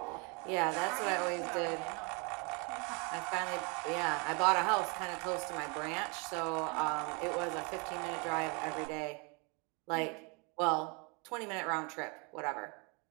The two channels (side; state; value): left; quieter; 32.5 dB